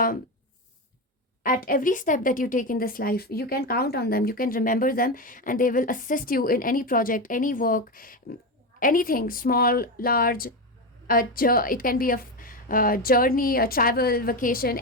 at every step that you take in this life. You can count on them, you can remember them, and they will assist you in any project, any work, anything, small, large. It can be a journey, a travel, vacation,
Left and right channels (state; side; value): normal; both; correlation 0.15